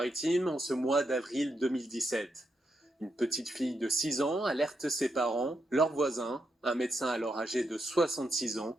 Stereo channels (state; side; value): normal; both; correlation 0.82